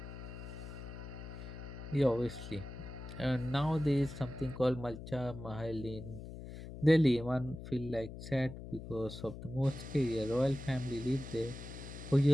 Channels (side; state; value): left; noise; hum, 11 dB below the sound